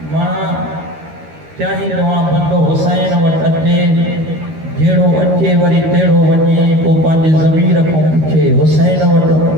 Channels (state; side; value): late; left; 13 ms